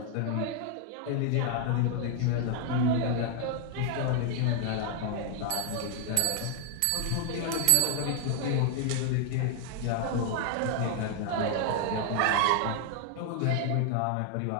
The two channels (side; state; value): both; different; correlation 0.00